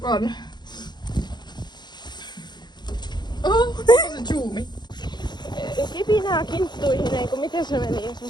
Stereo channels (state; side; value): late; right; 0.21 ms